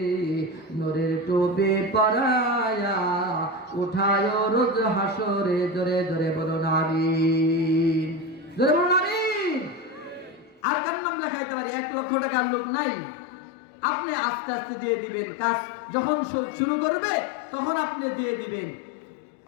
নূরের টুপি পরায়া উঠায় রোজ হাসরে। জোরে জোরে বলুন আমিন, জোরে বলুন আমিন। আর কার নাম লেখাইতে পারি? 1,00,000 টাকার লোক নাই। আপনি আস্তে আস্তে দিয়ে দিবেন, কাজ যখন শুরু করবে তখন আপনি দিয়ে দিবেন।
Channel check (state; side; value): drops out; right; at 10.6 s